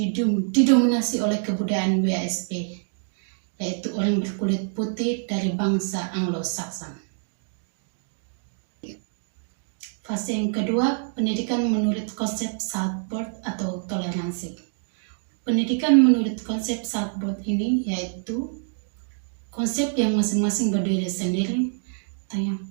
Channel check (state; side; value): silent; left; digital silence